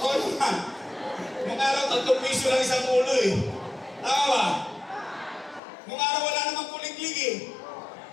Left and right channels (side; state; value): right; drops out; at 5.6 s